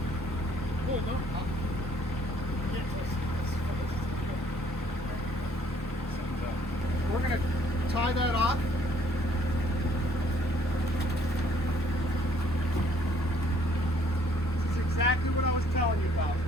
Oh, no. We're gonna tie that off. This is exactly what I was telling you about.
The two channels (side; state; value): both; normal; correlation 0.63